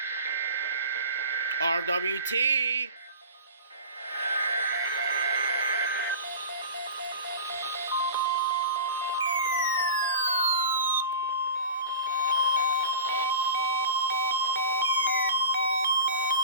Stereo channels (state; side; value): inverted; both; correlation -0.35